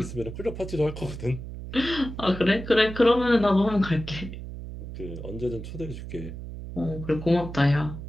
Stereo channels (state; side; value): noise; right; hum, 10 dB below the sound